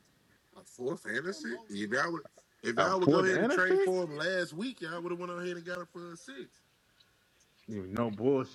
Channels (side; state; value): both; identical; correlation 1.00